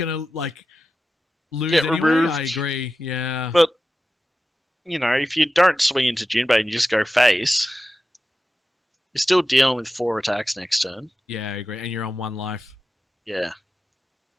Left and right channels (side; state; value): both; normal; correlation 0.93